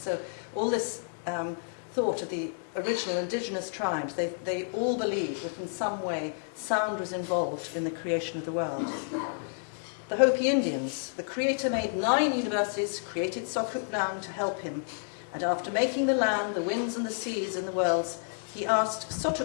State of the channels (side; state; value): right; silent; digital silence